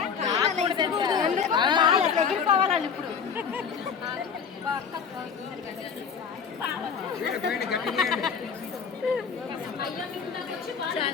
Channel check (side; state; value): right; quieter; 6.5 dB